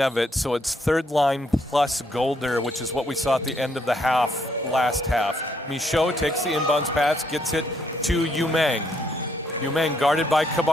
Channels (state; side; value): normal; both; correlation 0.73